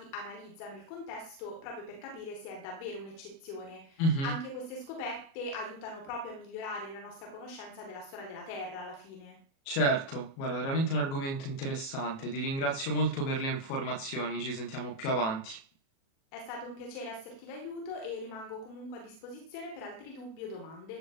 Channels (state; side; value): late; right; 37 ms